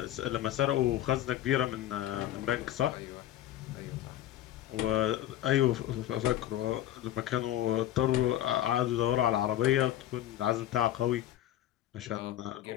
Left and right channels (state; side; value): quieter; right; 12.9 dB